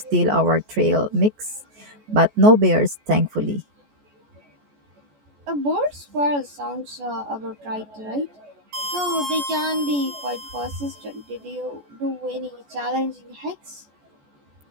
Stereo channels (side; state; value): left; late; 14 ms